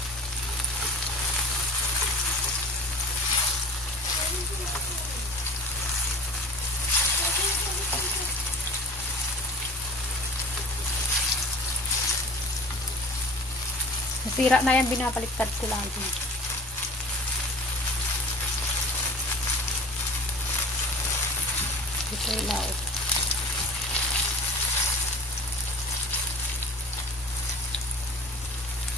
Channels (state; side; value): normal; both; correlation 0.38